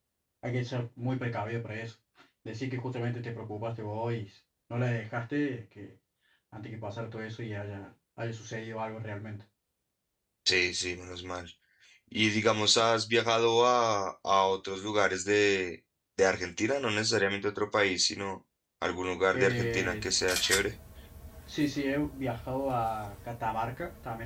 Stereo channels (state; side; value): identical; both; correlation 1.00